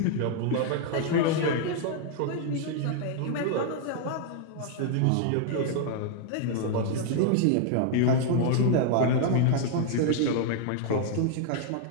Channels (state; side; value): different; both; correlation 0.00